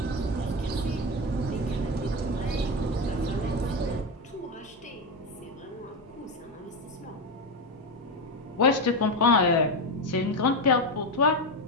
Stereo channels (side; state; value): both; normal; correlation 0.13